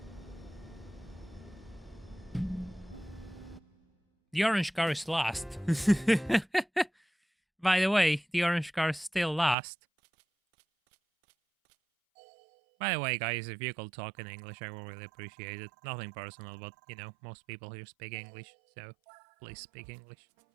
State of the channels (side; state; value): left; drops out; at 9.6 s